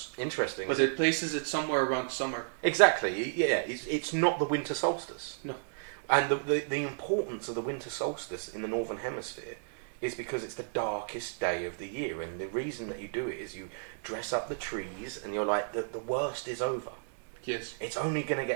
Interesting. But it places it somewhere around summer. Exactly. Yeah. It's not the winter solstice. No. And the importance of the winter solstice in the Northern Hemisphere is because it's the darkest day of the year, and the reason that you do it is you dress up the trees, and you're like, the worst is over. Yes. It's only going to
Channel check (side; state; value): left; silent; digital silence